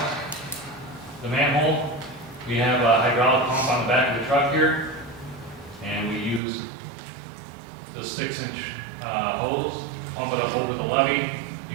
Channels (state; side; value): drops out; left; at 6.4 s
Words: the manhole. We have a hydraulic pump on the back of the truck here, and we use the 6-inch hose, pump it up over the levee.